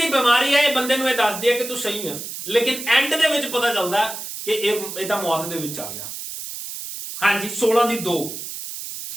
ਬਿਮਾਰੀ ਹੈ ਇਹ ਬੰਦੇ ਨੂੰ ਇਹ ਦੱਸਦੀ ਹੈ ਕਿ ਤੂੰ ਸਹੀ ਹੈ, ਲੇਕਿਨ ਐਂਡ ਦੇ ਵਿੱਚ ਪਤਾ ਚੱਲਦਾ ਕਿ ਇਹ ਤਾਂ ਮੌਤ ਦੇ ਵਿੱਚ ਆ ਗਿਆ। ਹਾਂਜੀ 16 ਦੀ 2।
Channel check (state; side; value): noise; right; hiss, 8 dB below the sound